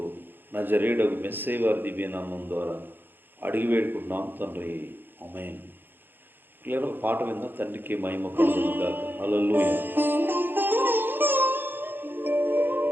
నజరేయుడగు మెస్సయ్య వారి దివ్యనామం ద్వారా అడిగి వేడుకుంటున్నాం తండ్రి, ఆమేన్. పిల్లలు ఒక పాట విందా. తండ్రికి మహిమ కలుగును గాక. హల్లెలూయా.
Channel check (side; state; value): left; late; 0.096 ms